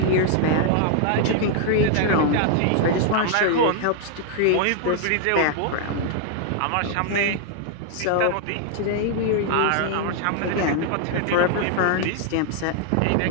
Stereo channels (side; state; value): both; different; correlation 0.00